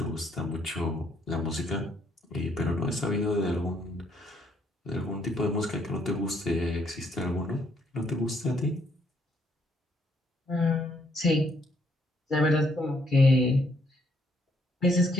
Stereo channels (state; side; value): normal; both; correlation 0.70